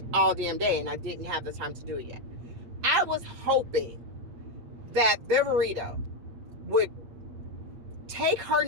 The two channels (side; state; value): left; late; 8.5 ms